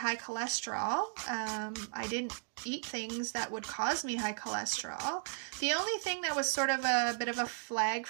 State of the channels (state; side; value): silent; left; 54 dB below the other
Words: cholesterol. I didn't eat things that would cause me high cholesterol. The only thing that was sort of a bit of a flag